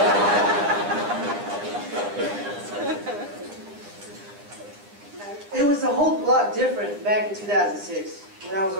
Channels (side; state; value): left; late; 9.8 ms